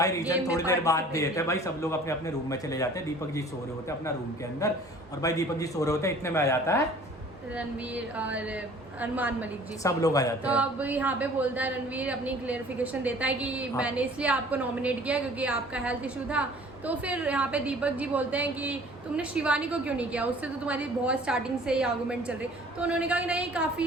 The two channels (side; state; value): both; normal; correlation 0.50